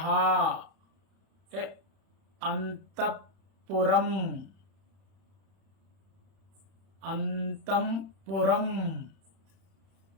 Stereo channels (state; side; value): late; left; 31 ms